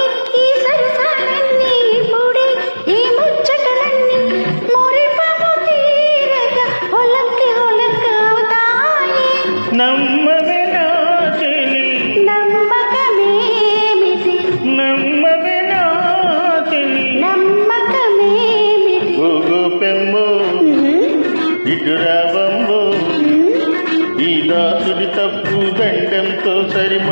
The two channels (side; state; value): both; inverted; correlation -1.00